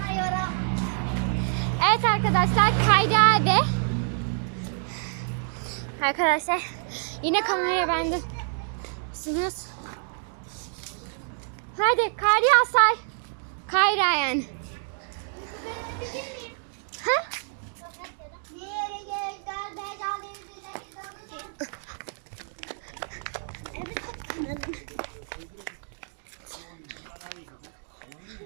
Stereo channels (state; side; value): silent; left; 58 dB below the other